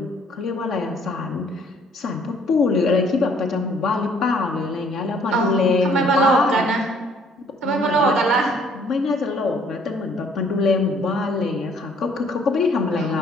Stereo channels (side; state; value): both; normal; correlation 0.61